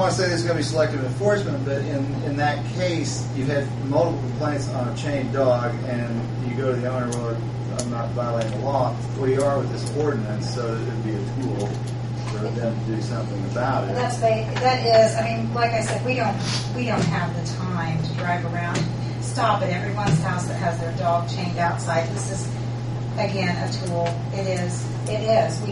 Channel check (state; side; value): identical; both; correlation 1.00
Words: to say this is going to be selective enforcement, but in that case, you've had multiple complaints on a chained dog, and you go to the owner, well, I'm not violating the law. Well, you are with this ordinance, so it would be a tool for them to do something about it. That is, I mean, like I said, we don't have the time to drive around, stop at everyone's house that has their dog chained outside. This is, again, a tool. It is. We